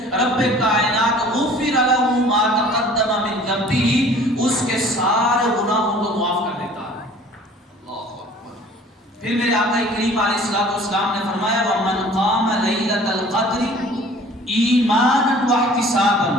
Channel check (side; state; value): both; normal; correlation 0.49